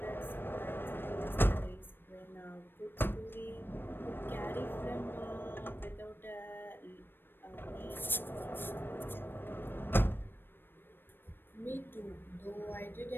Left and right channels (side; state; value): right; late; 0.098 ms